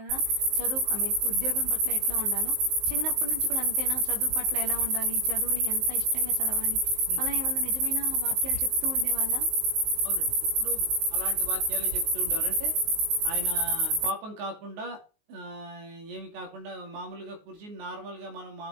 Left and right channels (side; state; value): left; late; 19 ms